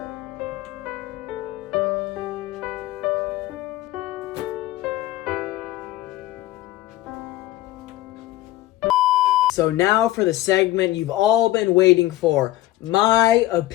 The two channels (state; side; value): quieter; right; 16.0 dB